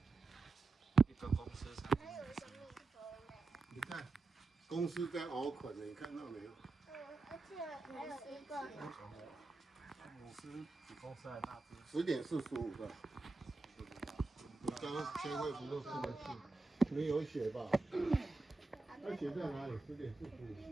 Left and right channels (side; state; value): left; quieter; 3.5 dB